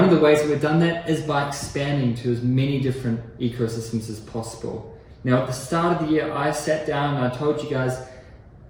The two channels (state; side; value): identical; both; correlation 1.00